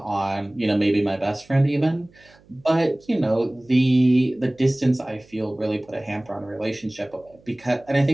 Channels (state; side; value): noise; right; hum, 29 dB below the sound